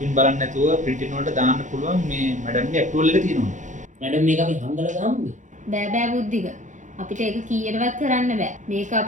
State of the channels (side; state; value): left; late; 0.36 ms